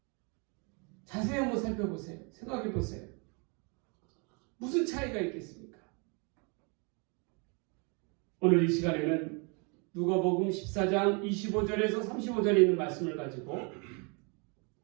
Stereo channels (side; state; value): left; quieter; 33.7 dB